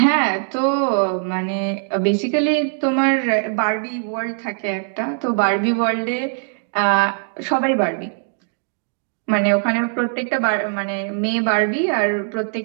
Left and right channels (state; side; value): silent; left; digital silence